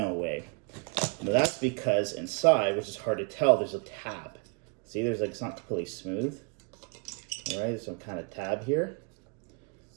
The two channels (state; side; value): quieter; left; 35.6 dB